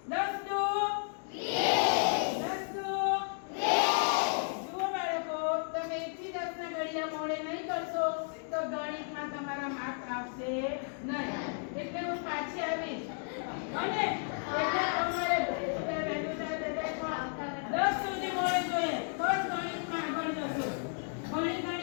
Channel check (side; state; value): right; silent; 56 dB below the other